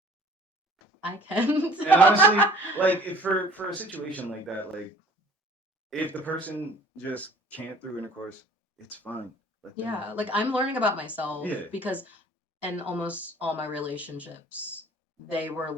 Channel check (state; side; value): normal; both; correlation 0.51